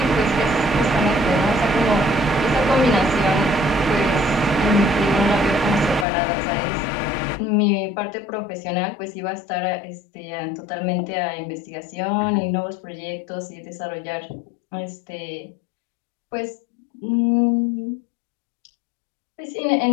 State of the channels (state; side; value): drops out; right; at 6.1 s